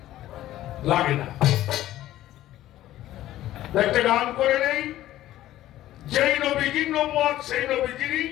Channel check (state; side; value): quieter; right; 14.1 dB